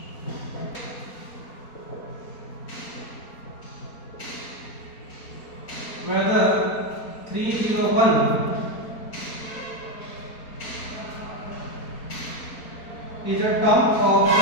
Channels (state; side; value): late; right; 4.3 ms